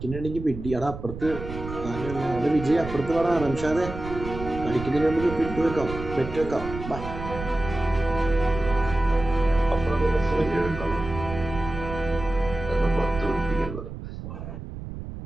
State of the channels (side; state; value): right; noise; rumble, 10 dB below the sound